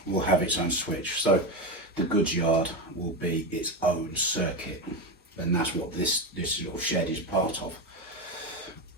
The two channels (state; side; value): normal; both; correlation 0.16